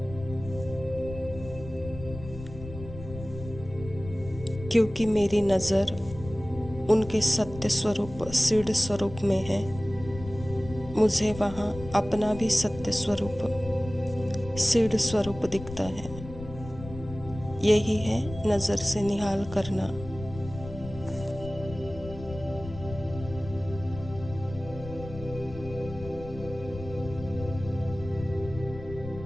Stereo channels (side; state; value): left; noise; rumble, 13 dB below the sound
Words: क्योंकि मेरी नज़र उनके सत्य स्वरूप सिद्ध स्वरूप में है, मुझे वहाँ अपना भी सत्य स्वरूप सिद्ध स्वरूप दिखता है। यही है नज़र से निहाल करना।